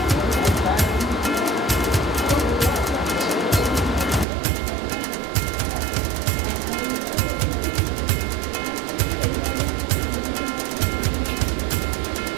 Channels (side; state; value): left; drops out; at 4.2 s